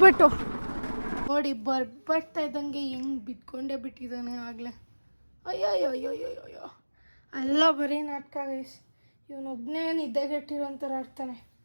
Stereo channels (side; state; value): both; inverted; correlation -1.00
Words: ನೋಡಿ ಬರ್ತಾ ಇದ್ದಂಗೆ ಹೆಂಗೆ ಬಿಟ್ಕೊಂಡೇ ಬಿಟ್ಟಿದ್ದಾನೆ ಆಗಲೇ. ಅಯ್ಯೋ ಅಲ್ಲ ಬರೀ ನಾಟಕ ಗೈಸ್. ಇವನೊಬ್ಬನೇ ನಿದ್ದೆಗೆಟ್ಟಿರೋಂಥರ ಆಡ್ತಾನೆ,